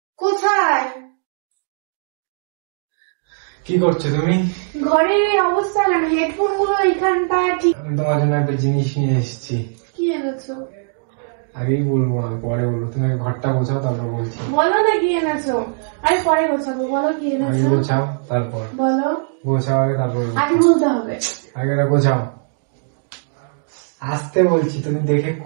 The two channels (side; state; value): left; silent; digital silence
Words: কোথায়? কি করছো তুমি? ঘরের এই অবস্থা কেন? হেডফোন গুলো এখানটা ঠিক। আমি তোমার জন্য একটা জিনিস নিয়ে এসেছি। কি এনেছো? আগেই বলবো না, পরে বলবো। তুমি আগে ঘরটা গোছাও, তারপর বলছি। বলো না কি এনেছো। আরে পরে গোছাবো, বলো কি আগে এনেছো। গোছাও তারপর বলো, গোছাও, আগে তারপর আগে বলতে হবে। আগে গোছাও। আসতে বলছি, তুমি দেখে